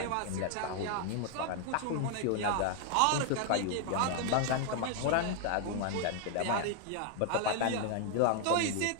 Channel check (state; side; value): different; both; correlation 0.00